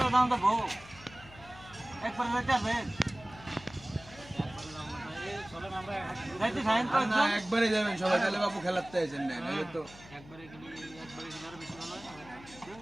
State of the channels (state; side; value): noise; left; hum, 20 dB below the sound